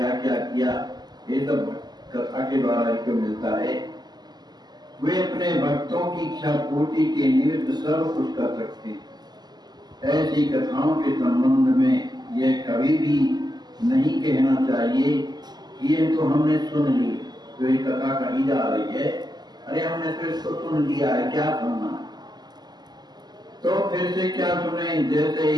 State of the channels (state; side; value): late; left; 0.20 ms